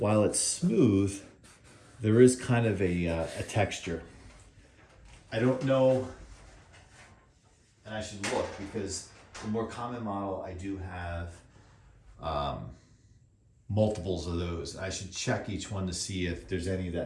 it's smooth, there is kind of a texture. I don't know, and I should look because the more common model, I do have multiples of those. I should check each one to see if there's any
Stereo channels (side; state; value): both; identical; correlation 1.00